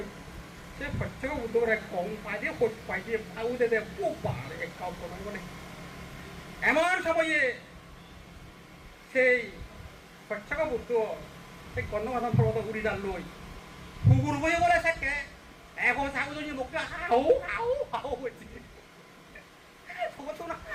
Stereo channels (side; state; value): both; identical; correlation 1.00